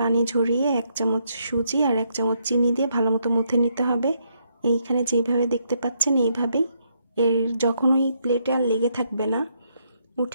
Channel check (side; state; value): both; inverted; correlation -0.76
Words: ঝরিয়ে 1 চামচ সুজি আর 1 চামচ চিনি দিয়ে ভালো মতো মুথে নিতে হবে। এইখানে যেইভাবে দেখতে পাচ্ছেন এইভাবেই। এর যখন ওই প্লেটে আর লেগে থাকবে না,